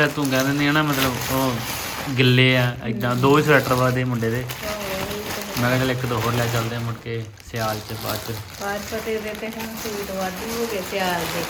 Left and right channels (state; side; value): identical; both; correlation 1.00